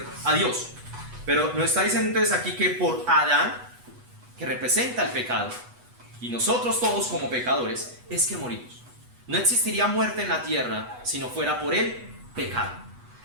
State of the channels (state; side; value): late; left; 8.1 ms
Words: a Dios. Pero nos está diciendo entonces aquí que por Adán, que representa el pecado, y nosotros todos como pecadores, es que morimos. No existiría muerte en la tierra si no fuera por el pecado.